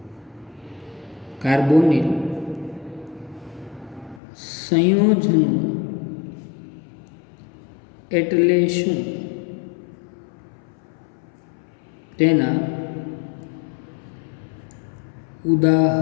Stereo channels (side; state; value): right; drops out; at 4.2 s